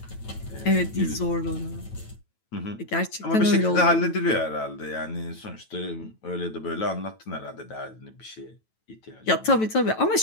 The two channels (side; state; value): right; late; 9.1 ms